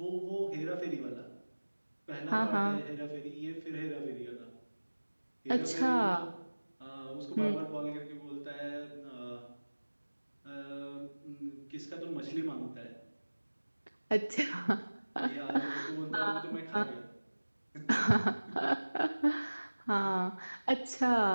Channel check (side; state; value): both; inverted; correlation -1.00